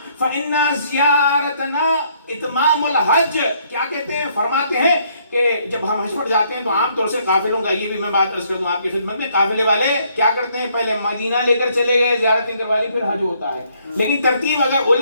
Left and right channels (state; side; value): inverted; both; correlation -0.68